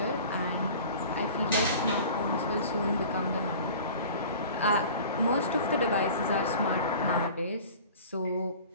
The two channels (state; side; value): inverted; both; correlation -0.42